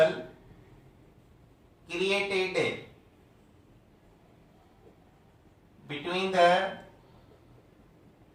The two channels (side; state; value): both; identical; correlation 1.00